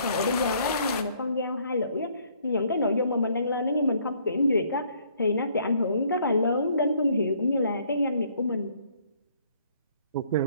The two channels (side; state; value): both; inverted; correlation -0.64